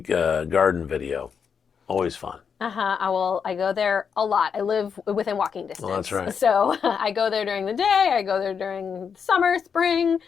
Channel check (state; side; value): quieter; right; 6.6 dB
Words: garden video. Always fun. I go there a lot. I live within walking distance. That's right. So I go there during the day. I go there during summer, spring,